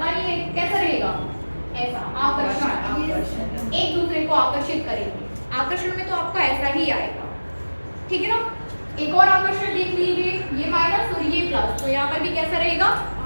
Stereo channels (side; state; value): both; inverted; correlation -1.00